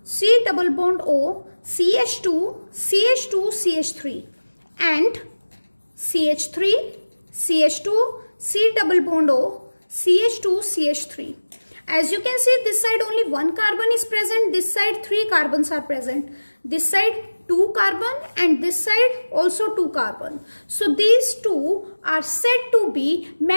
C double bond O, CH2, CH2, CH3 and CH3, CH2, C double bond O, CH2, CH3. As you can see, this side only one carbon is present, this side 3 carbons are present, this side 2 carbon and this side also 2 carbon. So these two are said to be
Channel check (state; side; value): inverted; both; correlation -1.00